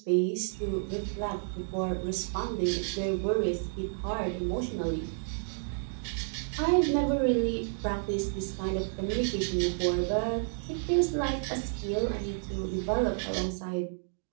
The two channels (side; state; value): left; silent; digital silence